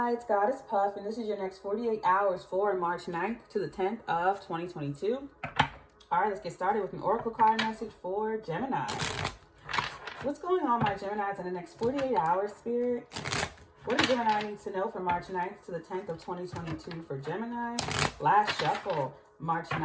it's GoddessPuff, and this is your next 48 hours for March 9th to the 10th of 2022. All right, let's get started with an oracle card message for Gemini. What's going on, my Geminis, in the next 48 hours, Spirit? What does Gemini need to know for March 9th to the 10th of 2022 for Gemini? Last shuffle, March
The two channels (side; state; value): both; identical; correlation 1.00